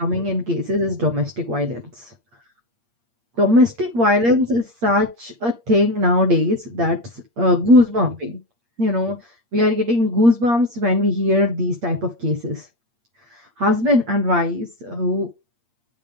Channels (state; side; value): late; left; 8.6 ms